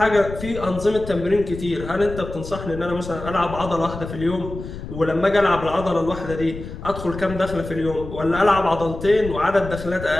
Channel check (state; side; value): noise; left; rumble, 10 dB below the sound